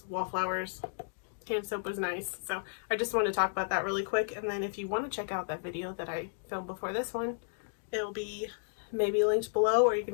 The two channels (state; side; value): silent; right; digital silence